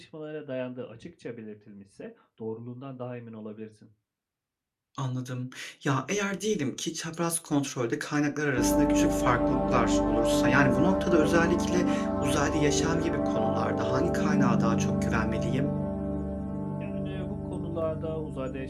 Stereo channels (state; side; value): identical; both; correlation 1.00